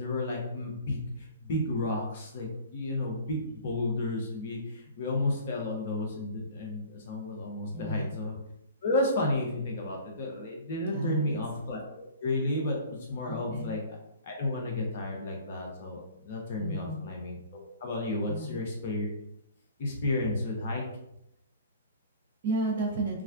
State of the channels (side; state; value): both; inverted; correlation -0.44